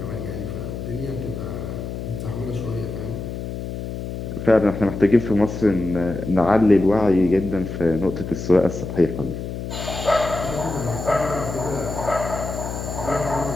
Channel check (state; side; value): noise; left; hum, 6 dB below the sound